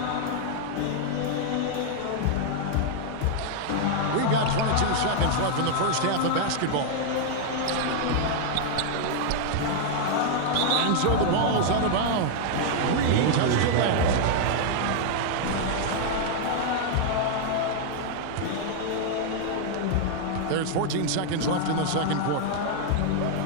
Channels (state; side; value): different; both; correlation -0.01